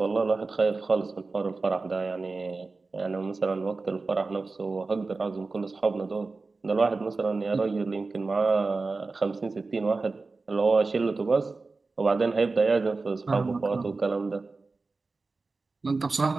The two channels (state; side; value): quieter; left; 3.8 dB